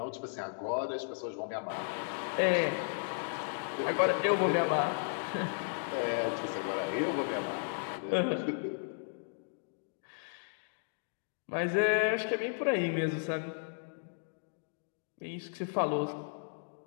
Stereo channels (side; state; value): right; silent; digital silence